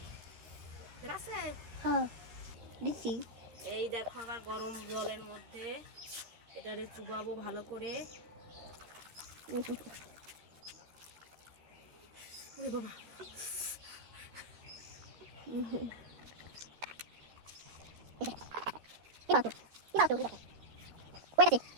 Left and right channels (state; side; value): late; left; 13 ms